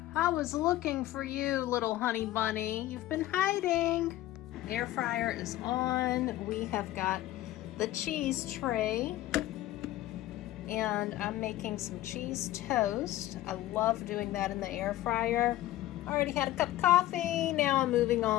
I was looking for you, little Honey Bunny. You've been hiding. Air fryer is on. We have got the cheese tray, and I'm making some cheese toast. I love doing that in the air fryer. Already had a cup of coffee. Now I'm moving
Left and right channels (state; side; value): quieter; right; 15.0 dB